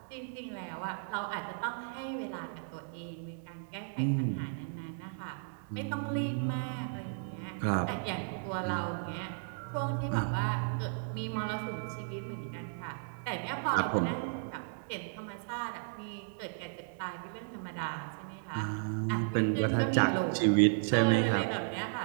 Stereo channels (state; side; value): silent; left; digital silence